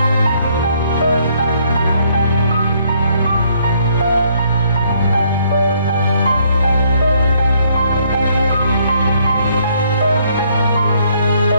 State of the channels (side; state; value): both; inverted; correlation -0.67